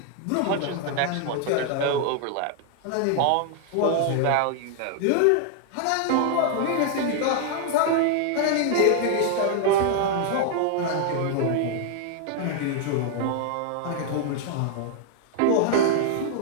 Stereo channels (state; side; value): different; both; correlation 0.00